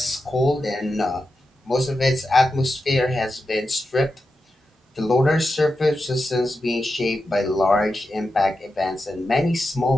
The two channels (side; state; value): both; normal; correlation 0.89